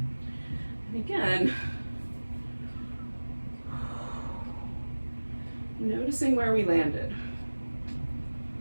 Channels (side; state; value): both; inverted; correlation -1.00